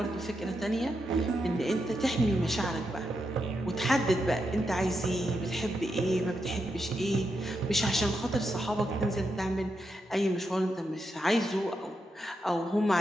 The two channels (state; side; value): normal; both; correlation 0.84